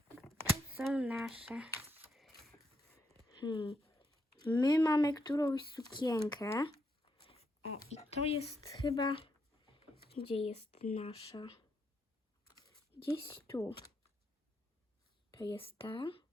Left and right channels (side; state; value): both; normal; correlation 0.78